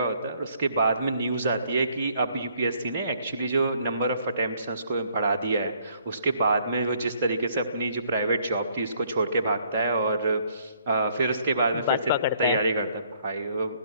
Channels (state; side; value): inverted; both; correlation -0.65